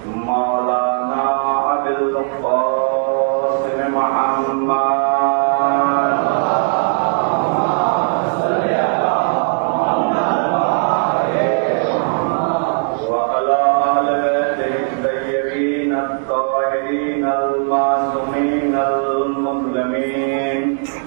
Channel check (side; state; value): left; silent; digital silence